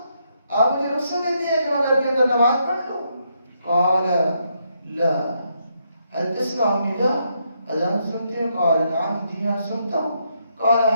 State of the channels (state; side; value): inverted; both; correlation -0.77